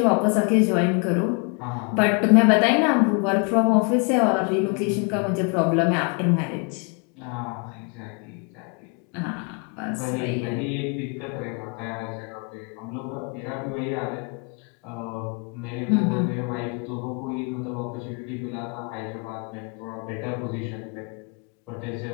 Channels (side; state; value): right; quieter; 34.9 dB